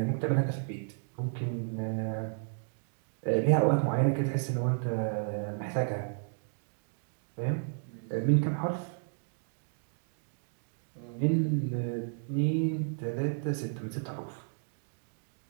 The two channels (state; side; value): silent; left; digital silence